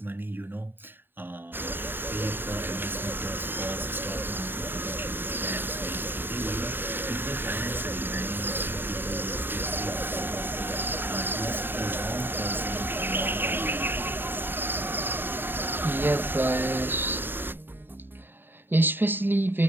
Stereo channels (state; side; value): late; left; 0.097 ms